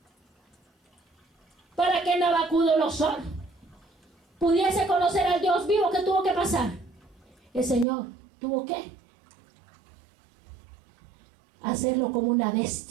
Para que Nabucodonosor pudiese conocer al Dios vivo, ¿qué tuvo que pasar? El Señor tuvo que hacerlo como una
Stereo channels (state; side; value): drops out; left; at 7.9 s